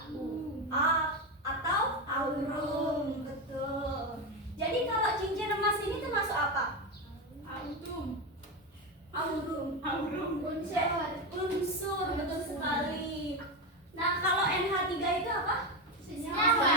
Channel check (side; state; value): both; normal; correlation 0.13